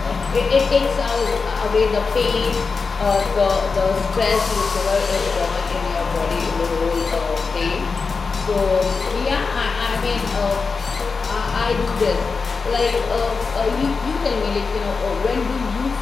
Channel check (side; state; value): right; quieter; 4.7 dB